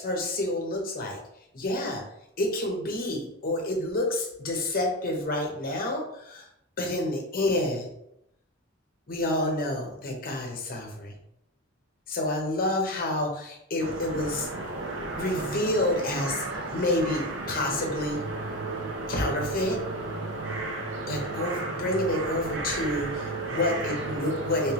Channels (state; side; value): normal; both; correlation 0.17